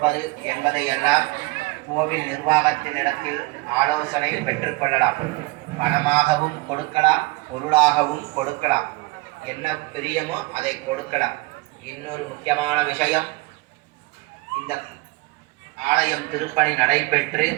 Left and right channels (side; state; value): left; quieter; 22.9 dB